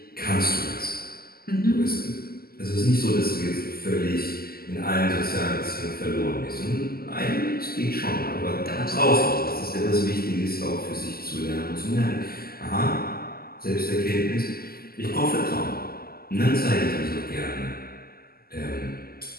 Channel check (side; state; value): right; late; 0.44 ms